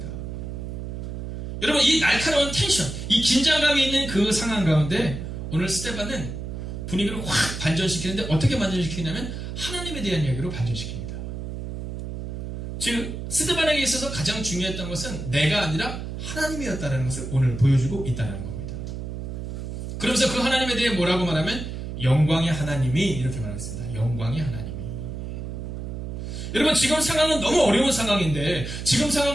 여러분, 이 날카로운 텐션, 이 긴장감이 있는 그 상황 가운데 오늘 스데반은 분위기를 확 반전시키는데, 어떻게 반전시키냐면 하나님에 대한 이야기로 반전시킵니다. 즉, 스데반에게 있어서 가장 중요했던 것은 내가 아니라 하나님이었다는 것을 오늘 보여주고 있다는 겁니다. 그러면서 그 하나님에 대해 뭐라고 말하면 영광의 하나님이, 이렇게 말하겠습니다. 영광의 하나님이. 여러분, 지금 상황은 너무 어려운 상황인데, 지금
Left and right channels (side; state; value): right; noise; hum, 6 dB below the sound